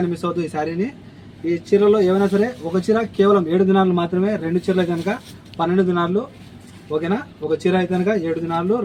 మిస్ అవ్వద్దు ఈ శారీని. ఈ చీరలో ఏమైనా సరే ఒక చీర కేవలం 7 దినాలు మాత్రమే, 2 చీరలు కనుక 12 దినాలు. ఓకేనా, ఒక చీర అయితే కనుక 7 దినాలు,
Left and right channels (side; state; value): both; identical; correlation 1.00